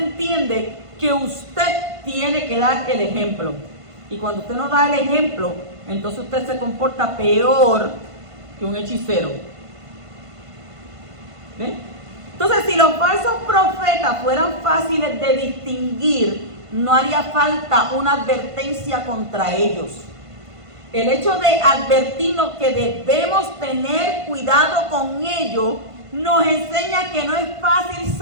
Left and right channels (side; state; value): left; late; 1.5 ms